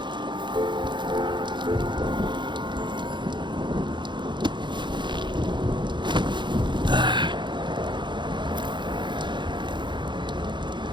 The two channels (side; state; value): left; late; 0.23 ms